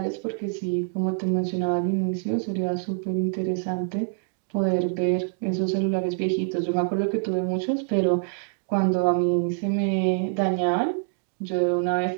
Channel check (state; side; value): silent; left; 59 dB below the other